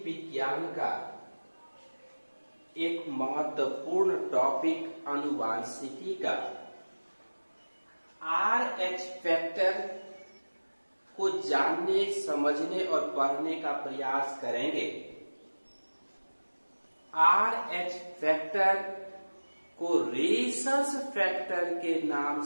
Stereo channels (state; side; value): inverted; both; correlation -1.00